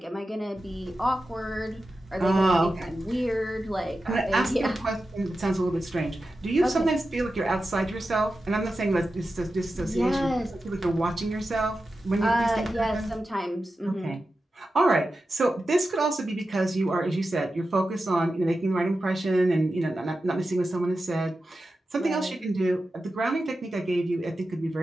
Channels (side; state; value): both; normal; correlation 0.92